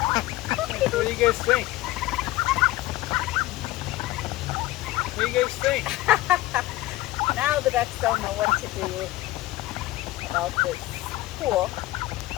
What do you guys think? What do you guys think? Now the ducks don't know what to do about this pool.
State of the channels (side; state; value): right; quieter; 17.4 dB